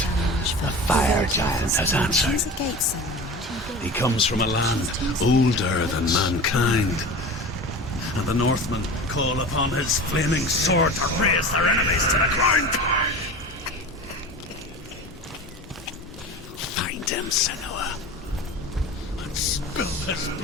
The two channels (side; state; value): both; normal; correlation 0.33